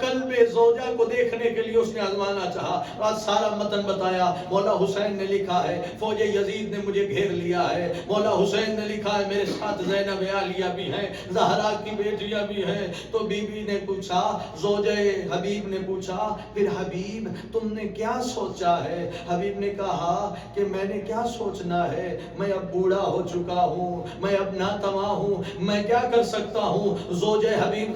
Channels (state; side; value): identical; both; correlation 1.00